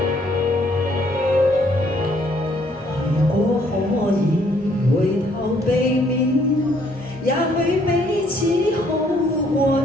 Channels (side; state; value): both; normal; correlation 0.66